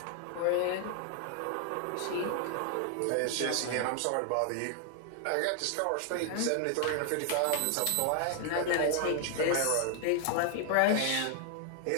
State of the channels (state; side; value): different; both; correlation 0.00